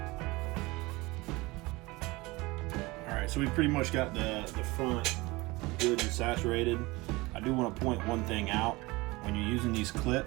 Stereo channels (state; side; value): quieter; left; 22.4 dB